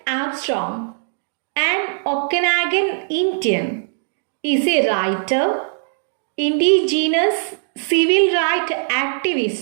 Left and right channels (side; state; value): left; silent; digital silence